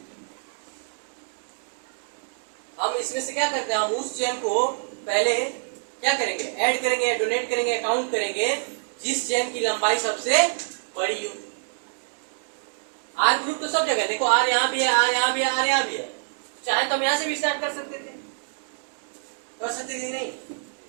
हम इसमें से क्या करते हैं? हम उस चेन को पहले क्या करेंगे? ऐड करेंगे, डोनेट करेंगे, काउंट करेंगे जिस चेन की लंबाई सबसे बड़ी हो। R ग्रुप तो सब जगह देखो, R यहाँ भी है, R यहाँ भी है, R यहाँ भी है। चाहे तो हम यहाँ से भी स्टार्ट कर सकते थे, नहीं?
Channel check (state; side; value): silent; left; digital silence